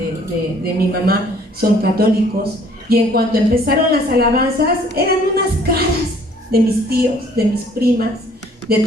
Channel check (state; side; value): normal; both; correlation 0.58